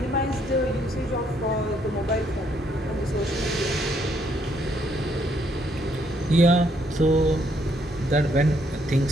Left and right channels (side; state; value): both; normal; correlation 0.71